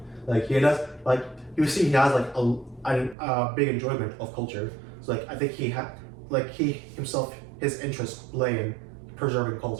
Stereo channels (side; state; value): left; drops out; at 3.2 s